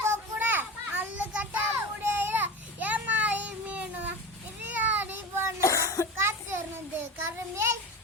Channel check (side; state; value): both; normal; correlation 0.28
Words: கொக்குட அல்லு கட்டா முடியல ஏமாறி மீனு இதையாடி பண்ண காத்திருந்து கருமே